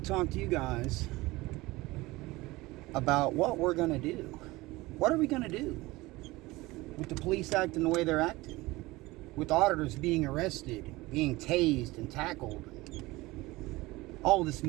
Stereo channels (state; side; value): quieter; left; 20.5 dB